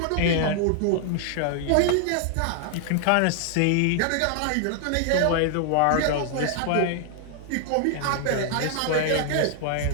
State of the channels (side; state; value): both; different; correlation 0.00